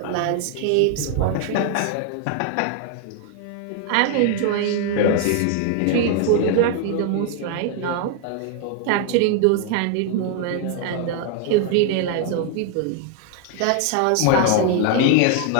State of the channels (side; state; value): both; different; correlation 0.00